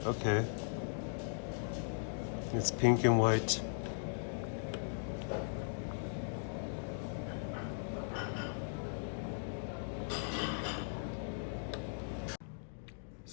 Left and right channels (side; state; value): right; silent; digital silence